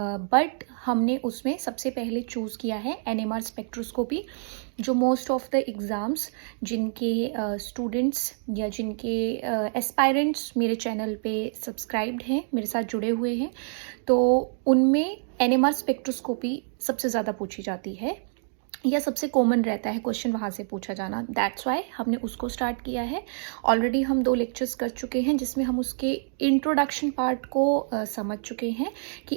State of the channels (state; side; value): silent; left; digital silence